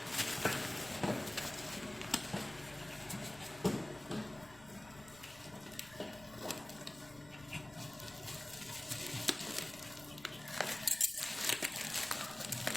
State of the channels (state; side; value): noise; left; rumble, 20 dB below the sound